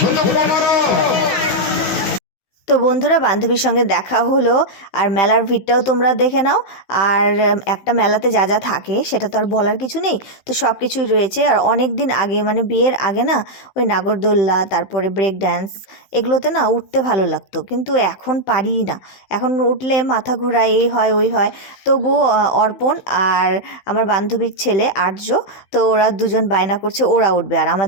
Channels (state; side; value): late; right; 16 ms